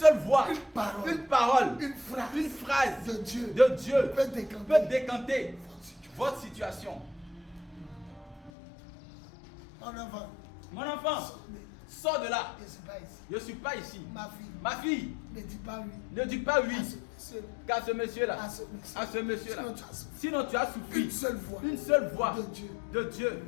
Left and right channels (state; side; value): drops out; right; at 8.5 s